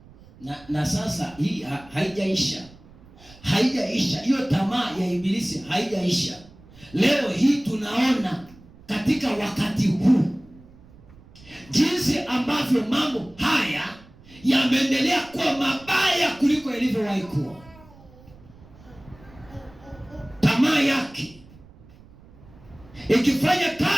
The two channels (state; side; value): noise; right; rumble, 23 dB below the sound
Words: Na sasa hii haijaisha. Haijaisha. Hiyo tamaa ya ibilisi haijaisha. Leo hii tunaona katika wakati huu jinsi ambavyo mambo haya yameendelea kuwa mabaya kuliko ilivyowahi kuwa. Tamaa yake ikifanya